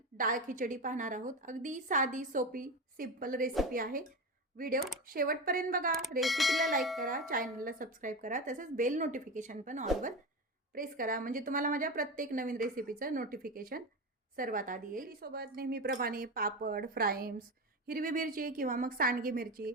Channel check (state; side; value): normal; both; correlation 0.21